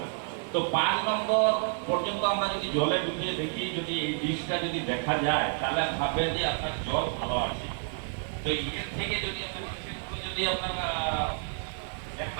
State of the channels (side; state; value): left; silent; 58 dB below the other